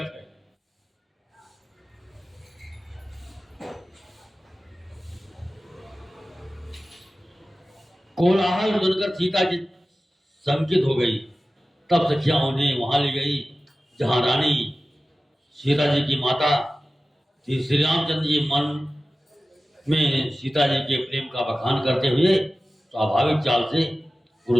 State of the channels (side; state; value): both; normal; correlation 0.95